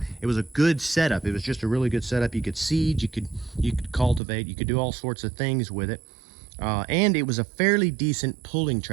it was a good setup. It was just a really good setup. You could seed, you could cultivate, you could do all sorts of things with it. And it was a fairly decent pulling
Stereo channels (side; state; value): left; drops out; at 4.2 s